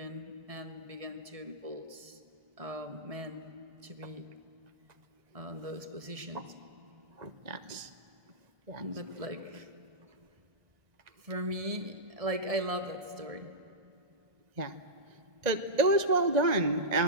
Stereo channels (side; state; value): left; late; 1.7 ms